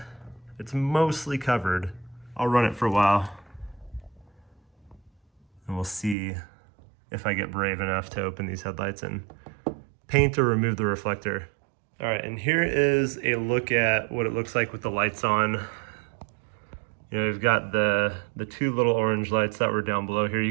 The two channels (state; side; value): drops out; left; at 6.2 s